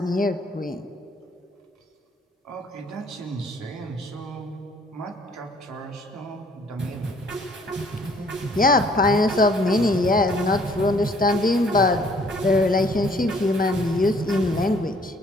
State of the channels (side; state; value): both; normal; correlation 0.60